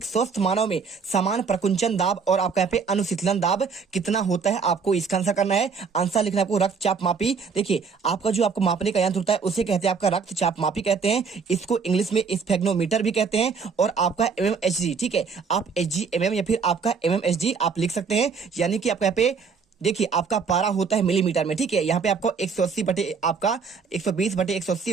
स्वस्थ मानव में समान प्रकुंचन दाब और आपका यहाँ पे अनुशीतलन दाब कितना होता है? आपको इसका आंसर करना है। आंसर लिखना है आपको रक्तचाप मापी। देखिए आपका जो आपको मापने का यंत्र होता है उसे कहते हैं आपका रक्तचाप मापी कहते हैं। इसको इंग्लिश में स्फेग्नोमीटर भी कहते हैं। और आपका mmHg, ठीक है, आप HgMM या फिर आपका mmHg आप लिख सकते हैं। यानी कि आपका यहाँ पे देखिए आपका पारा होता है मिलीमीटर में, ठीक है। यहाँ पे आपको 180 बटे आपका 120 बटे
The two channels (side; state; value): left; quieter; 5.5 dB